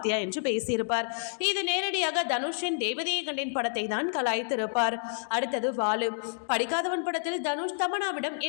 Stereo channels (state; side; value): silent; right; digital silence